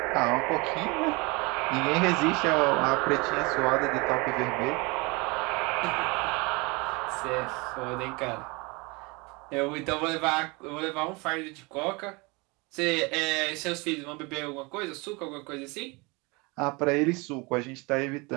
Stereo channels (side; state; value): left; quieter; 27.1 dB